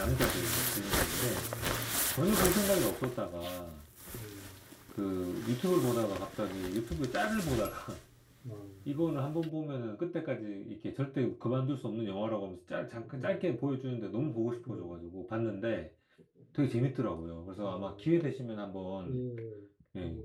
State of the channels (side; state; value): both; identical; correlation 1.00